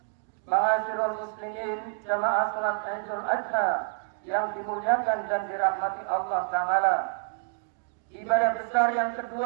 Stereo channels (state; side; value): silent; left; 59 dB below the other